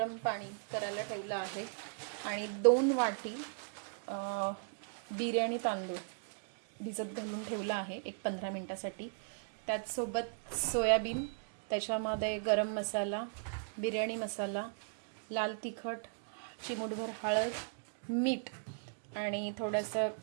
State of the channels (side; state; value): left; silent; digital silence